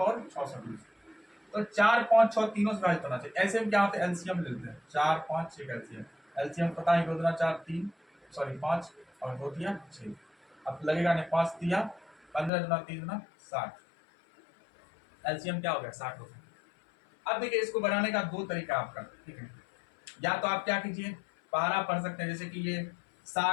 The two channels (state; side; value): drops out; right; at 12.5 s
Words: 600 के बीच, तो 4, 5, 6 तीनों से विभाजित होना चाहिए। ऐसे में क्या होता है, एलसीएम ले लेते हैं, 4, 5, 6 का एलसीएम। एलसीएम पता है, 2 दूना 4, 3, सॉरी 5 और 2 दिया 6। अब लगेगा नहीं, 5 दिया 15 दूना 3 दूना 60, एलसीएम क्या हो गया 60 हो गया। अब देखिए इसको बनाने का दो तरीका आपका, ठीक है। या तो आप क्या कीजिए, पहाड़ा पढ़ सकते हैं, जैसे कि ये